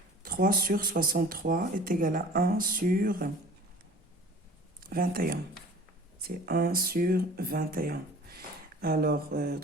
3 sur 63 est égal à 1 sur 21. C'est 1 sur 21. Alors,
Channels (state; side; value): normal; both; correlation 0.44